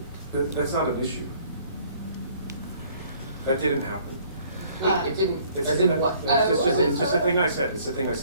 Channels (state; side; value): inverted; both; correlation -0.58